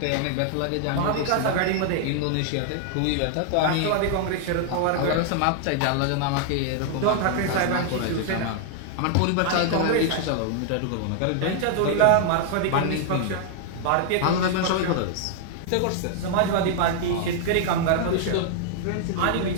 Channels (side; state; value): both; different; correlation 0.00